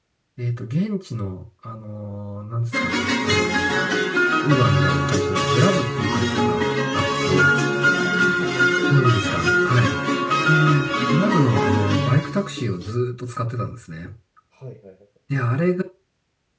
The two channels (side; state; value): both; identical; correlation 1.00